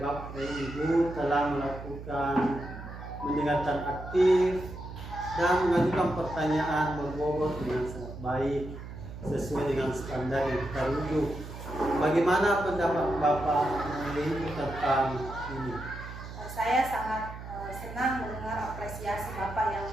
Ibu telah melakukan mendengarkan aktif dan mengajukan pertanyaan berbobot dengan sangat baik sesuai dengan standar yang kita rujuk. Bagaimana pendapat Bapak Ibu tentang ini? Saya sangat senang mendengar apresiasi Bapak yang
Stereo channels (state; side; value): noise; right; hum, 11 dB below the sound